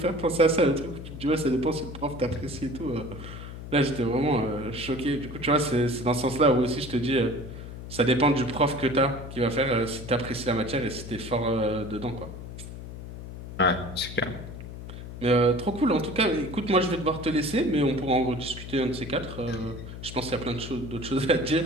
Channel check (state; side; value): noise; left; hum, 11 dB below the sound